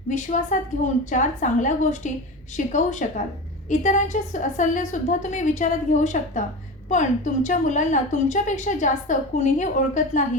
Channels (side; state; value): both; normal; correlation 0.27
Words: विश्वासात घेऊन 4 चांगल्या गोष्टी शिकवू शकाल. इतरांचे सल्लेसुद्धा तुम्ही विचारात घेऊ शकता, पण तुमच्या मुलांना तुमच्यापेक्षा जास्त कुणीही ओळखत